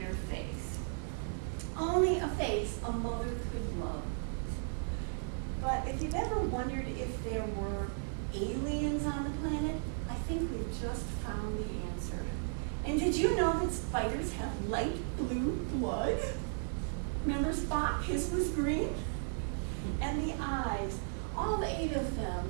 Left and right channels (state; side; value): silent; left; 54 dB below the other